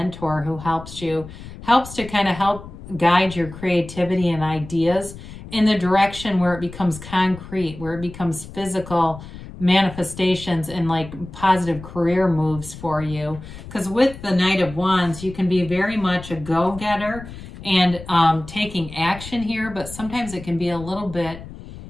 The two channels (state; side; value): noise; left; rumble, 14 dB below the sound